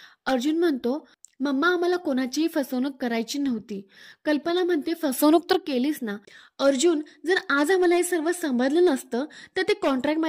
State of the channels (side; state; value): both; identical; correlation 1.00